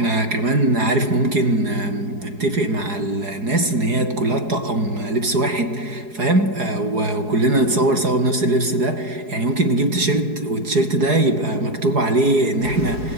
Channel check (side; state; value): left; late; 4.8 ms